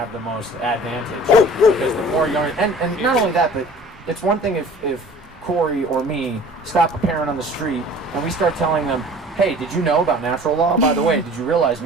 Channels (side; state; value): both; normal; correlation 0.46